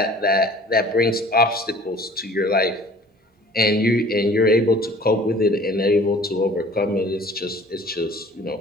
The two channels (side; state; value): both; normal; correlation 0.50